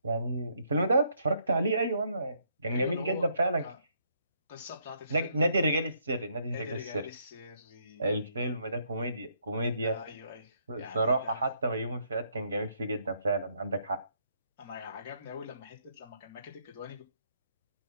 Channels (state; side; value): inverted; both; correlation -0.71